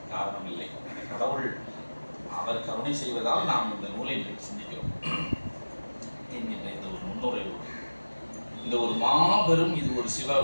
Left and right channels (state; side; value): inverted; both; correlation -1.00